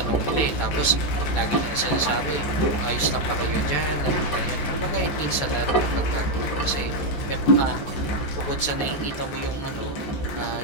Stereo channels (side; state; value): right; late; 14 ms